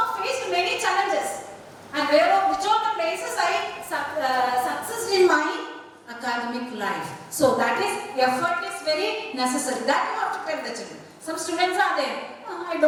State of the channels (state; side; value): identical; both; correlation 1.00